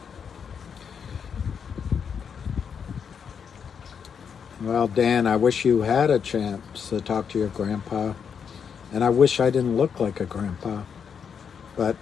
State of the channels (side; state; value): right; quieter; 7.0 dB